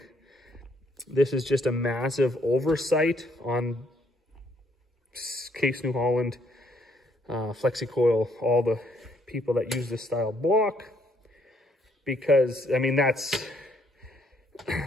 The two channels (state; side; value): normal; both; correlation 0.69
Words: this is just a massive oversight on Case New Holland, FlexiCoil, all the people that use this style block, because I mean,